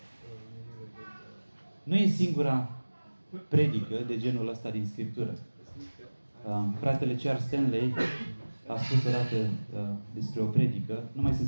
Nu e singura predică de genul ăsta din Scriptură. Fratele Charles Stanley a spus odată despre o predică. Nu mai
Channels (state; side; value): inverted; both; correlation -1.00